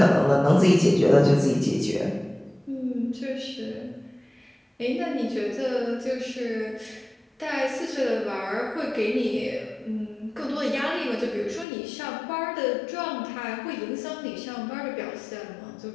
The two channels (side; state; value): right; drops out; at 11.7 s